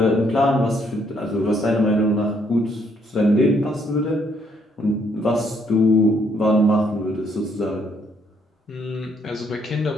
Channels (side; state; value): both; normal; correlation 0.70